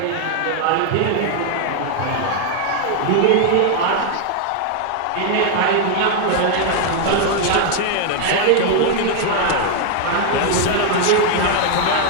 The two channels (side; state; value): both; different; correlation 0.00